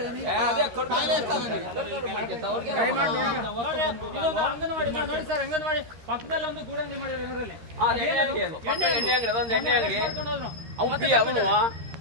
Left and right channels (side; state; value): left; late; 13 ms